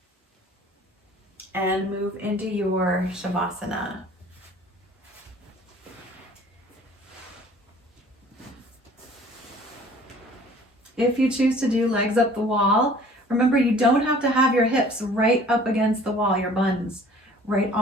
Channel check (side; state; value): both; normal; correlation 0.51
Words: and move into your Savasana. If you choose to do legs up the wall, remember you don't have to have your hips right up against the wall, your buns right